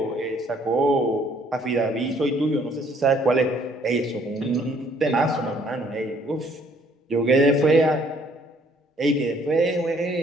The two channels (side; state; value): both; normal; correlation 0.63